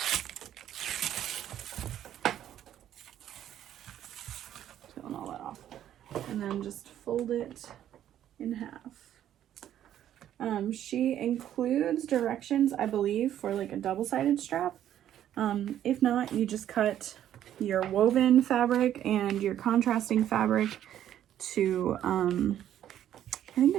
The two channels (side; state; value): left; quieter; 11.1 dB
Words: Peeling all that off. And then just fold it in half. She includes directions, I believe, for like a double-sided strap. If not, you just cut your woven fabric and your contrasting fabric to, I think